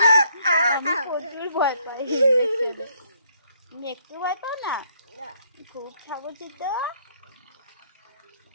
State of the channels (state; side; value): inverted; both; correlation -0.69